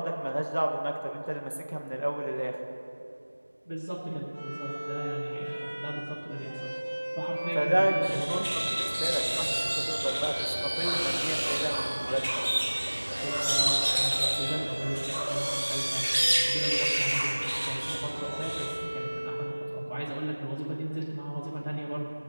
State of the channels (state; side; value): inverted; both; correlation -1.00